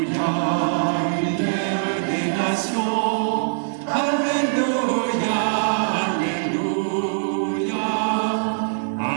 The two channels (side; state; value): left; silent; digital silence